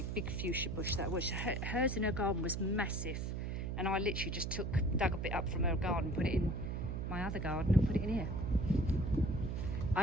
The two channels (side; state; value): right; noise; hum, 2 dB below the sound